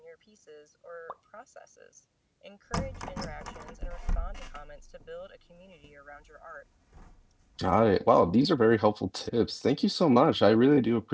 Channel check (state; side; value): identical; both; correlation 1.00